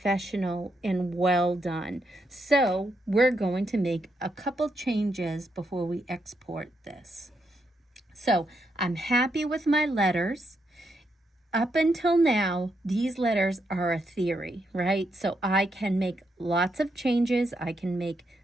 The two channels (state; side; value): normal; both; correlation 0.80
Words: and well done. So we're going to make a couple changes before we export this. So I'm happy with my letters. Up until now, these letters are a theory, right? So I can make lots of changes. I can make